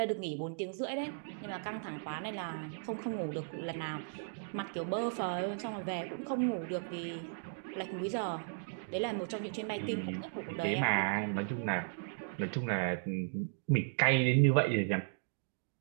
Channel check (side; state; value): left; silent; digital silence